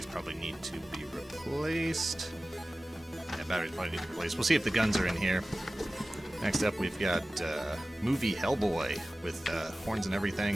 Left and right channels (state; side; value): normal; both; correlation 0.96